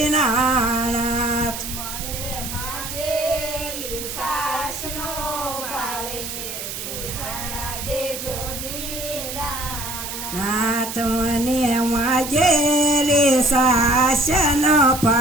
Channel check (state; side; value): noise; right; hiss, 7 dB below the sound